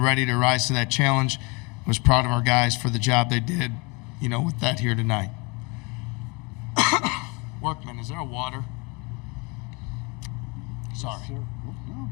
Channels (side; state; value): right; quieter; 29.2 dB